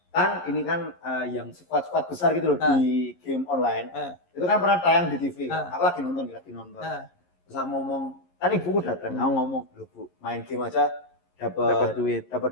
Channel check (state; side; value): late; right; 11 ms